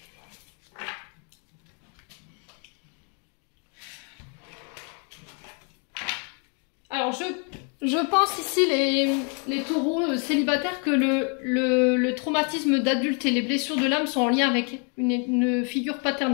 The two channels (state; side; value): quieter; right; 38.7 dB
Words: Alors, je pense ici, les taureaux célibataires, que le traumatisme d'adulte et les blessures de l'âme sont en lien avec une figure